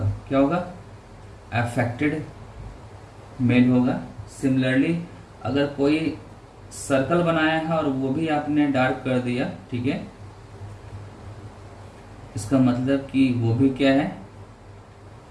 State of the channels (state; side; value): identical; both; correlation 1.00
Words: क्या होगा? अफेक्टेड मेल होगा। सिमिलरली अगर कोई सर्कल बनाया है और वो भी आपने डार्क कर दिया, ठीक है, इसका मतलब कि वो भी क्या है,